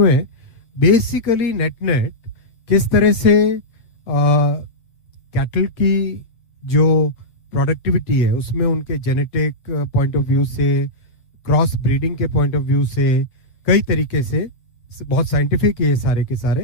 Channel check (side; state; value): right; late; 8.6 ms